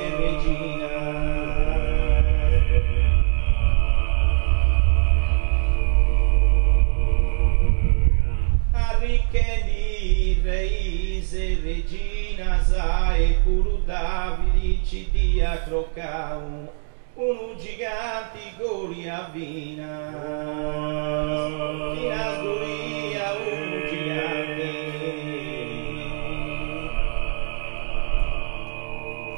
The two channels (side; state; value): left; silent; digital silence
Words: regina arricchendi reis e regina sa e puro Davide ci dia Grocau uno giganti Golia vina fino a Sgolia uno gigante